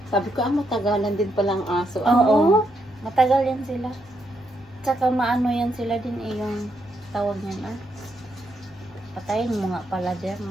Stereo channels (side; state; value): both; normal; correlation 0.78